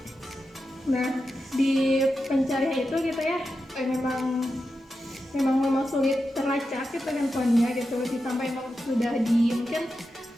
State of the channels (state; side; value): normal; both; correlation 0.90